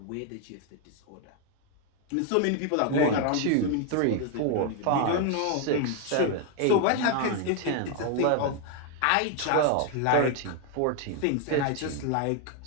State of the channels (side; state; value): both; different; correlation 0.01